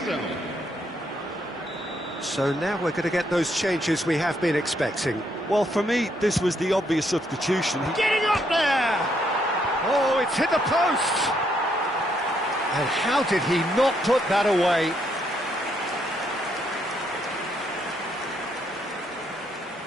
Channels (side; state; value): both; normal; correlation 0.74